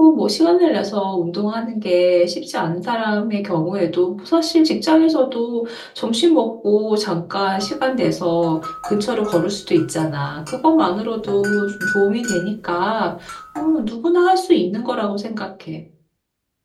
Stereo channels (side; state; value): both; identical; correlation 1.00